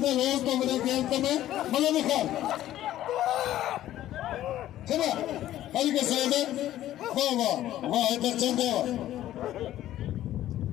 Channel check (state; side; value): quieter; right; 13.3 dB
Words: रोज तो मेरे खेल में मलक खान चला भाई के सैयद वाह वाह वाह इधर चंदे